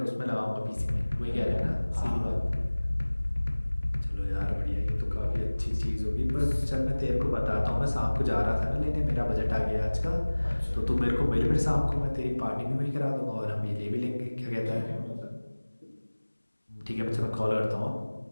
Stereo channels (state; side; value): inverted; both; correlation -1.00